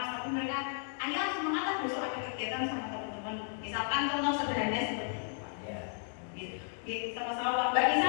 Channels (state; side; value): silent; right; 55 dB below the other